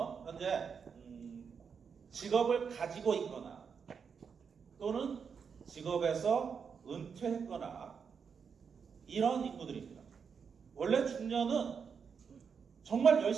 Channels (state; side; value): quieter; left; 6.3 dB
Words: 현재 직업을 가지고 있거나 또는 직업에서 은퇴했거나 이런 인구들입니다. 원래 중년은 정말